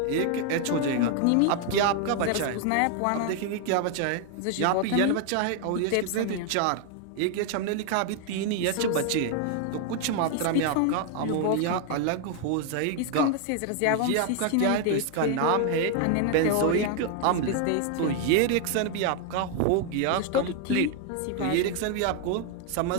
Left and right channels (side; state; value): both; different; correlation 0.00